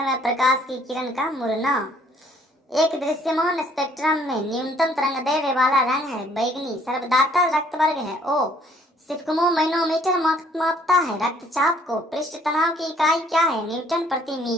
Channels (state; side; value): normal; both; correlation 0.62